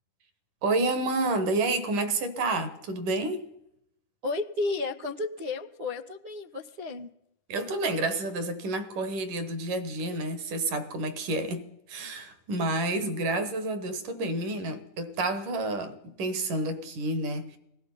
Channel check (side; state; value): left; late; 10 ms